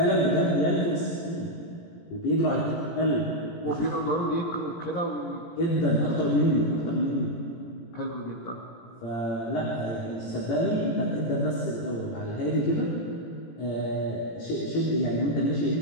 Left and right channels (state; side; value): late; right; 18 ms